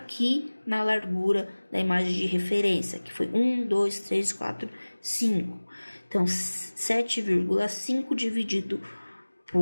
na largura da imagem de referência, que foi 1, 2, 3, 4, 5. Então, 7,5 dividido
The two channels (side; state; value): both; inverted; correlation -1.00